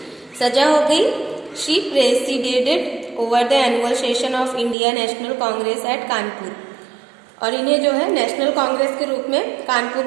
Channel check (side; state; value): left; drops out; at 4.8 s